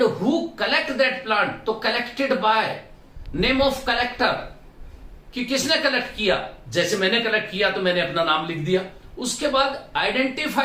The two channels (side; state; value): both; identical; correlation 1.00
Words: who collect that plant, तो collected by, name of collector, कि किसने कलेक्ट किया, जैसे मैंने कलेक्ट किया तो मैंने अपना नाम लिख दिया। उसके बाद